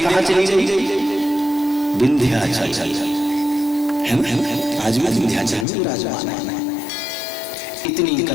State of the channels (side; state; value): right; drops out; at 5.7 s